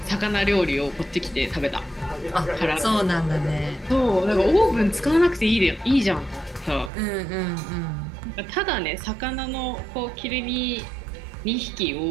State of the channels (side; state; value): left; drops out; at 6.9 s